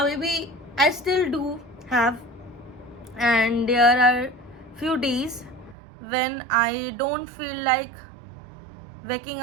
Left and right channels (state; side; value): drops out; left; at 5.8 s